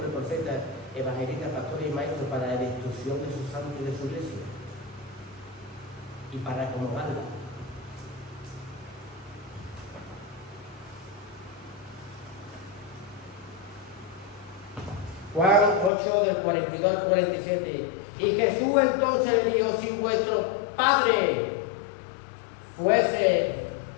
profetas, evangelistas, pastores y maestros para la destrucción de sus santos y de su iglesia. Y para acomodarla. Juan 8, del 42 al 47. Y Jesús entonces le dijo: si vuestro Padre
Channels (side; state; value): right; drops out; at 15.9 s